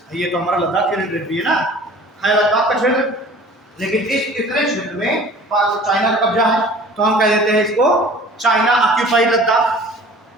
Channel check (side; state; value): both; normal; correlation 0.46